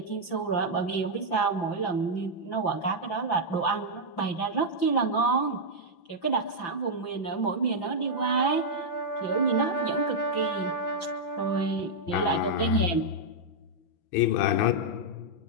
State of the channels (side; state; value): right; late; 5.9 ms